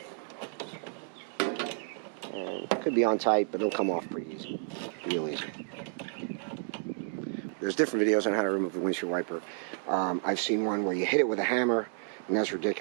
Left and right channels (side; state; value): left; silent; digital silence